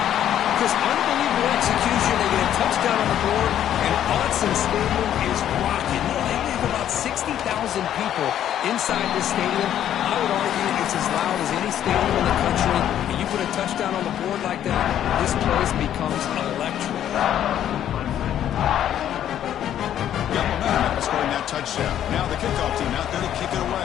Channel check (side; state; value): right; quieter; 10.8 dB